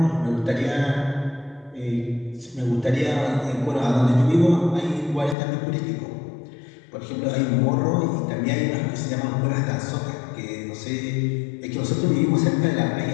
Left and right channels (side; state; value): right; drops out; at 5.4 s